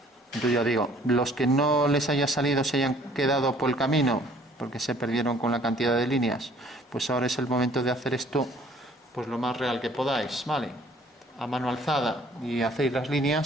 Entonces ya digo, los que no les haya salido, se hayan quedado por el camino, porque se perdieron con la cantidad de líneas, pues ahora es el momento de hacer esto pues lo más real que podáis, ¿vale? A mano alzada, y hacéis las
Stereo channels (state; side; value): normal; both; correlation 0.57